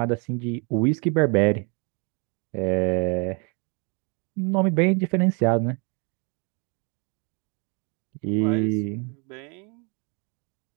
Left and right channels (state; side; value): quieter; left; 33.9 dB